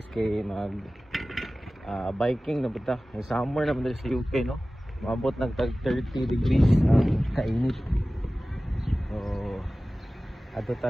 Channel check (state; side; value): normal; both; correlation 0.97